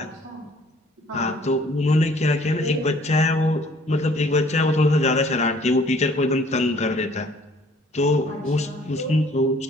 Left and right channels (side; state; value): both; normal; correlation 0.57